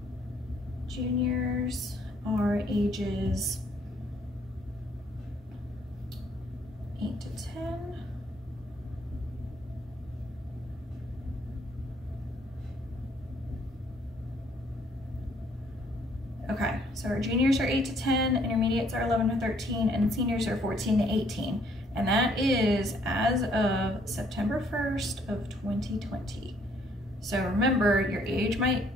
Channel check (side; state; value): both; normal; correlation 0.65